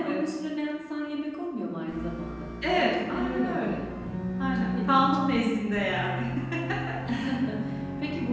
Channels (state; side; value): identical; both; correlation 1.00